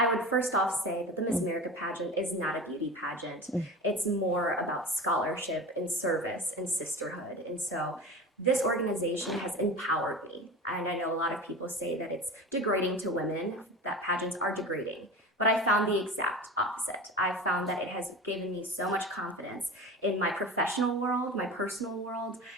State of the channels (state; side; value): normal; both; correlation 0.32